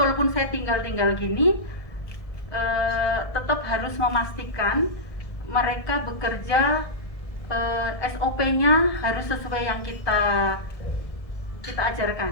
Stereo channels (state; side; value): late; right; 1.7 ms